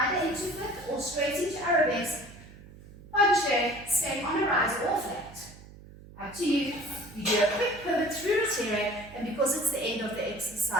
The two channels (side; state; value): right; noise; hum, 19 dB below the sound